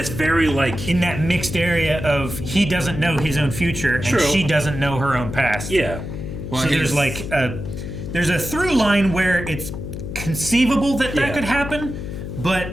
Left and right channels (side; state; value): left; noise; hum, 7 dB below the sound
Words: very, like, in that mixed area of he doesn't know his own future and she doesn't know her own past. Yeah. Well, so there's like there's a through line where it's conceivable that could happen,